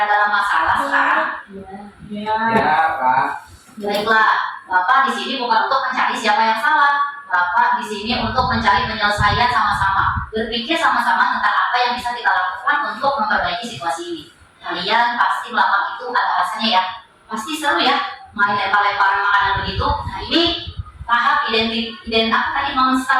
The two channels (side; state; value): both; identical; correlation 1.00